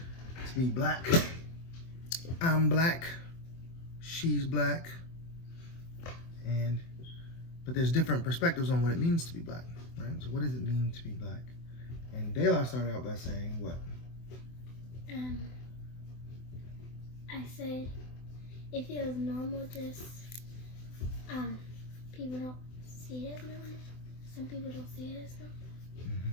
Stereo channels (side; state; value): right; late; 24 ms